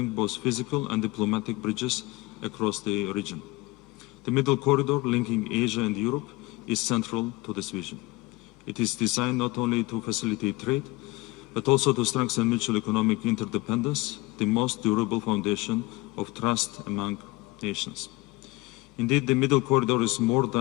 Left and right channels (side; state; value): right; quieter; 21.7 dB